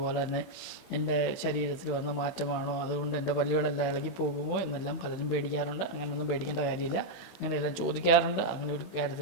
തന്നെ എൻ്റെ ശരീരത്തിൽ വന്ന മാറ്റമാണോ, അതുകൊണ്ട് എൻ്റെ പല്ലുകളെല്ലാം ഇളകി പോകുമോ എന്നെല്ലാം പലരും പേടിക്കാറുണ്ട്. അങ്ങനെയൊന്നും പേടിക്കേണ്ട കാര്യമില്ല. അങ്ങനെയെല്ലാം ചോദിക്കാറുണ്ട്. അങ്ങനെ ഒരു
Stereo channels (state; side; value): late; right; 16 ms